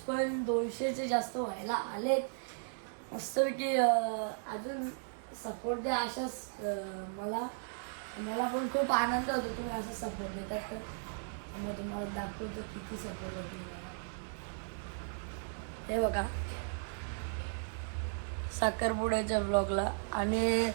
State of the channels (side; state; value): left; silent; digital silence